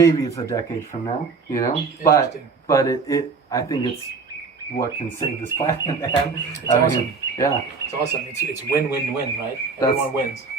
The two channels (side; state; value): left; quieter; 4.7 dB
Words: it's a decade from now, but I think it's what can save this planet, man. It's awesome. Yeah. It's awesome. It's win-win-win, right? Everyone wins.